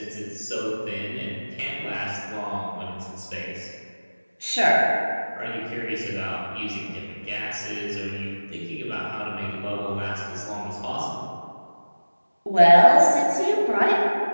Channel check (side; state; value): both; inverted; correlation -1.00